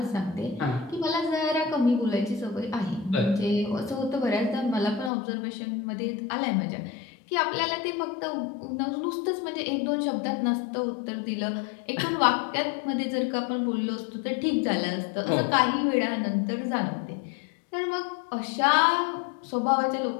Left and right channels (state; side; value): drops out; right; at 5.1 s